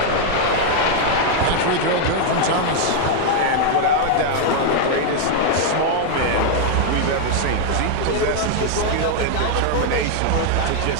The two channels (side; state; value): both; different; correlation 0.00